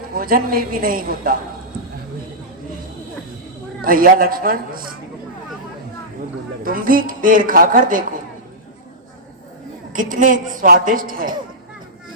भोजन में भी नहीं होता। भैया लक्ष्मण, तुम भी बेर खाकर देखो, कितने स्वादिष्ट है।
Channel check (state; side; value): normal; both; correlation -0.12